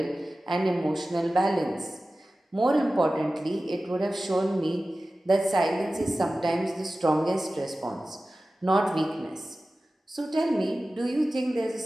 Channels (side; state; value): both; normal; correlation 0.96